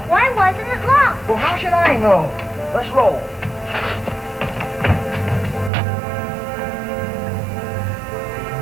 Why wasn't it locked? Well, how should I know? Let's roll.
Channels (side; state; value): left; drops out; at 5.7 s